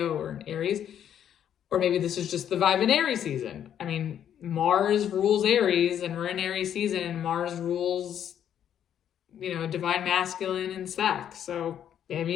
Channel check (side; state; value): right; quieter; 9.7 dB